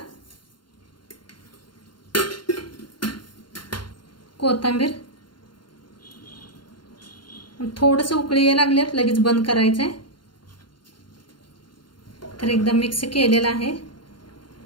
कोथिंबीर. थोडंसं उकळी यायला लागल्यात लगेच बंद करायचंय. तर एकदम मिक्स केलेलं आहे.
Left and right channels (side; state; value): right; late; 0.72 ms